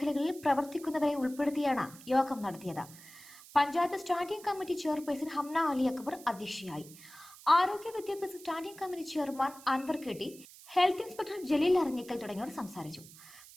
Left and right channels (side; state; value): right; noise; hiss, 19 dB below the sound